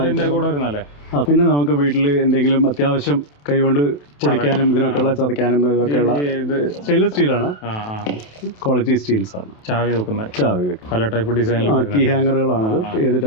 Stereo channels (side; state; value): right; late; 28 ms